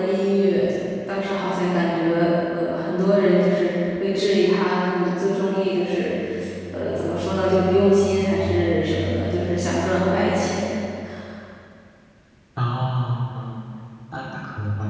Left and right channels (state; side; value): identical; both; correlation 1.00